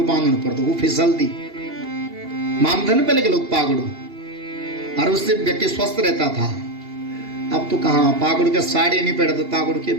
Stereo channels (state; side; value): late; left; 2.8 ms